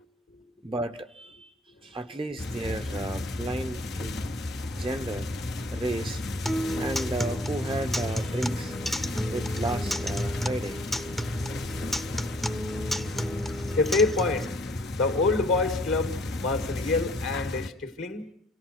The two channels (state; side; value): normal; both; correlation 0.59